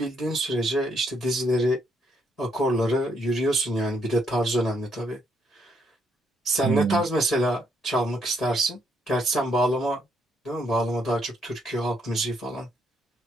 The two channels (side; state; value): both; normal; correlation 0.74